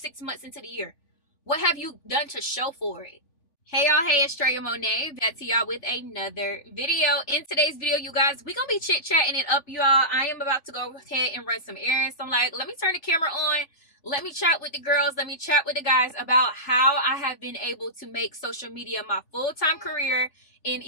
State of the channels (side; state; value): right; late; 3.4 ms